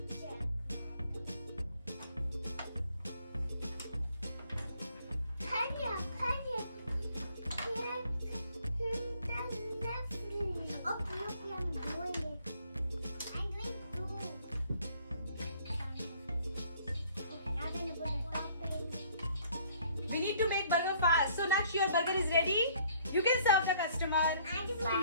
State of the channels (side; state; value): both; inverted; correlation -0.60